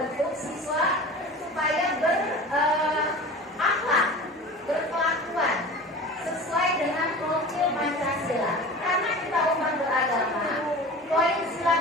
siswa supaya berakhlak, berkelakuan sesuai dengan profil Pancasila. Karena kita umat beragama, poin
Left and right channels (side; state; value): both; normal; correlation 0.36